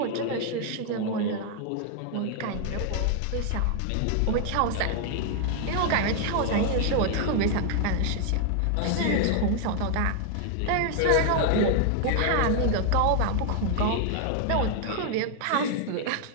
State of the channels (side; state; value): both; different; correlation 0.00